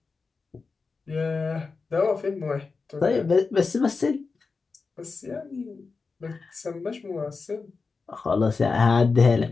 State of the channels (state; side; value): quieter; right; 4.5 dB